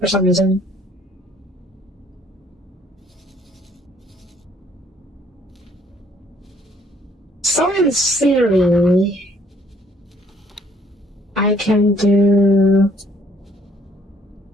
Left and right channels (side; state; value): both; normal; correlation 0.62